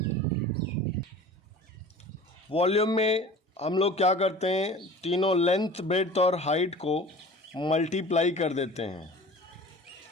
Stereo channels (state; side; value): normal; both; correlation 0.41